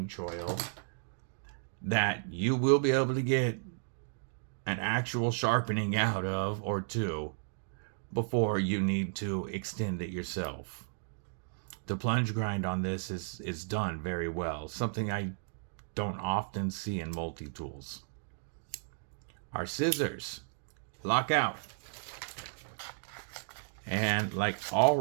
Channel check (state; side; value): silent; left; digital silence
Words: choil that you will be able to get an actual sharpening out of or two before you need to extend it yourself. The plunge grind on this is done very well, something I don't often see in multi-tools. Our scissors lock out, and like all